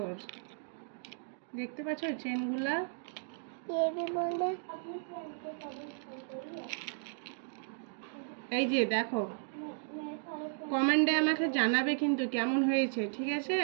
দেখতে পাচ্ছ চেনগুলা। এই যে দেখো, কমেন্টে আমাকে জানাবে কিন্তু কেমন হয়েছে, ঠিক আছে?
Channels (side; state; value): left; silent; digital silence